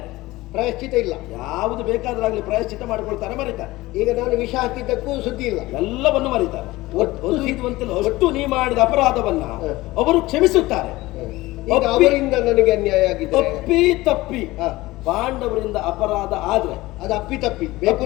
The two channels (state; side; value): quieter; right; 19.1 dB